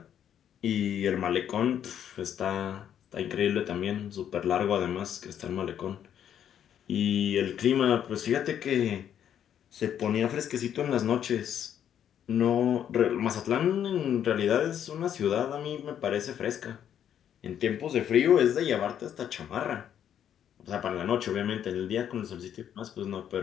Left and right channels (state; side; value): quieter; right; 9.6 dB